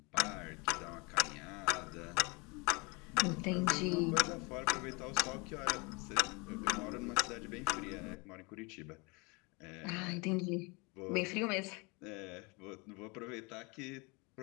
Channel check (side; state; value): right; quieter; 28.5 dB